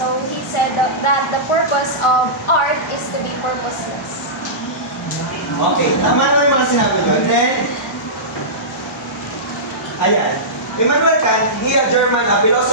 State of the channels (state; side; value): normal; both; correlation -0.18